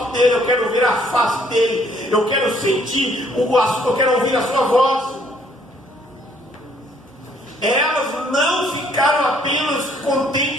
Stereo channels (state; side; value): normal; both; correlation 0.64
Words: dele, eu quero ver a face dele, eu quero sentir eu quero ouvir a sua voz. Elas não ficaram apenas